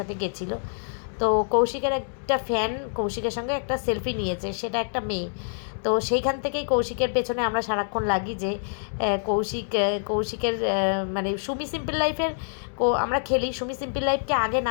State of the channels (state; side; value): silent; right; digital silence